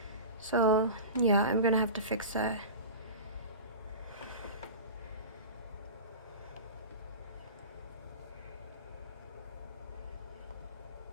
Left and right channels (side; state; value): both; inverted; correlation -0.32